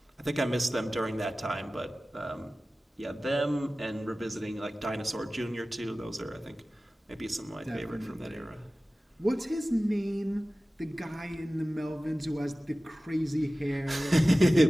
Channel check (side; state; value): both; normal; correlation 0.96